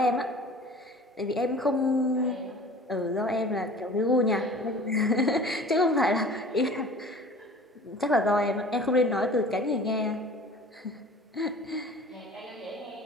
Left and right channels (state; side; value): normal; both; correlation 0.44